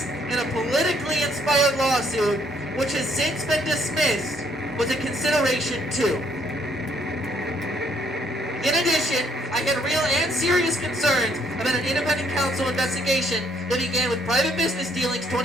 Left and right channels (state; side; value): normal; both; correlation 0.67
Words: in a politically inspired lawsuit, which has since been dismissed, was a consideration too. In addition, I had real and serious concerns about an independent counsel investigation that began with private business dealings